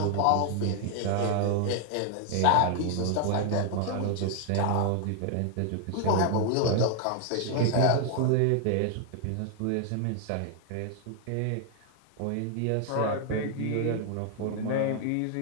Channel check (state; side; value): different; both; correlation 0.00